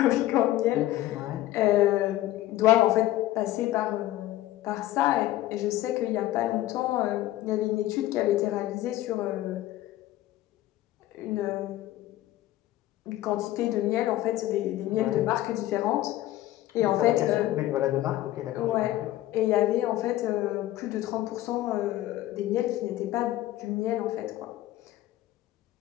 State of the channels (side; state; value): right; quieter; 15.0 dB